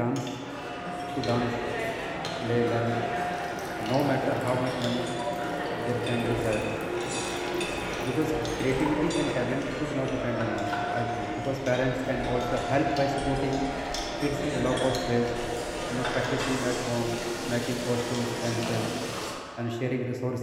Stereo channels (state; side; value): identical; both; correlation 1.00